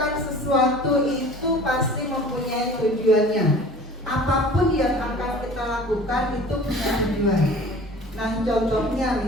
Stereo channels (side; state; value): both; normal; correlation 0.45